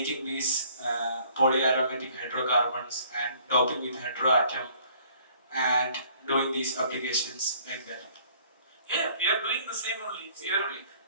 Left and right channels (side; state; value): both; inverted; correlation -0.58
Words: these polyaromatic hydrocarbons and doping with heteroatom and doing these applications like that? Yeah, we are doing the same only. We